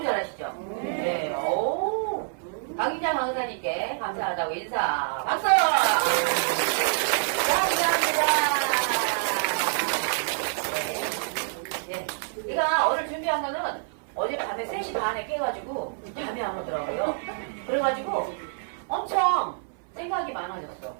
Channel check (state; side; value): silent; left; 57 dB below the other